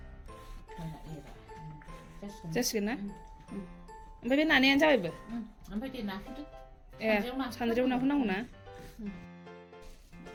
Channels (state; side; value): identical; both; correlation 1.00